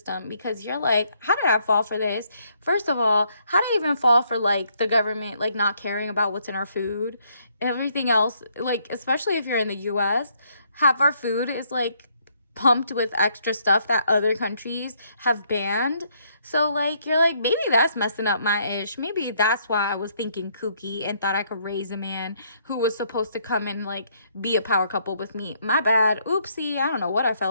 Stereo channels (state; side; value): inverted; both; correlation -0.70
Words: because you're like, how did I fall for this? First of all, how did I even fall for like the government like not caring about what's in our food? Everything else, like, especially if you're in the US, half our food is like pumped with extra stuff that other countries have banned. So like, you're like, maybe that's messing up my ish. Maybe that's why I was thinking kooky and thought I could raise a man who was supposed to come and like be a power couple with me. My bad. Oopsie. I don't know what I